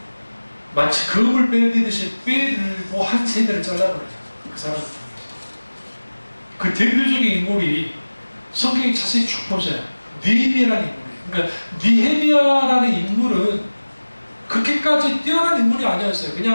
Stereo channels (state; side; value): inverted; both; correlation -1.00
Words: 마치 금을 빼듯이 빼들고 한 세대를 잘라버려요. 그 사람을 통해서. 그 대표적인 인물이 성경에 자세히 쭉 보세요. 느헤미야라는 인물이에요. 그러니까 느헤미야라는 인물은 그렇게까지 뛰어난 인물이 아니었어요.